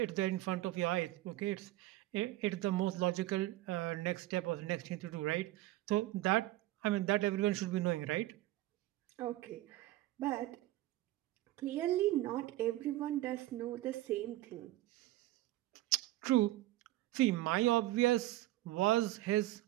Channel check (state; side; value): quieter; left; 16.3 dB